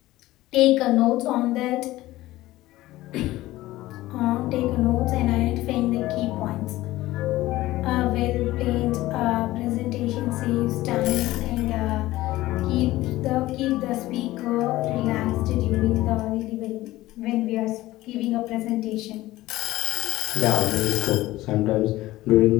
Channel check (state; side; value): quieter; right; 17.0 dB